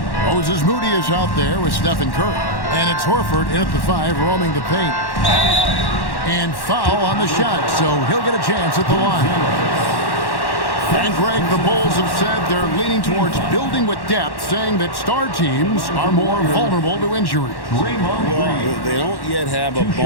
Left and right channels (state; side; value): late; right; 1.1 ms